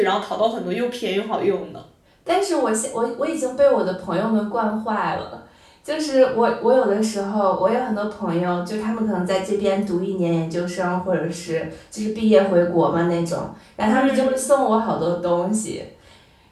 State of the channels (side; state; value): both; identical; correlation 1.00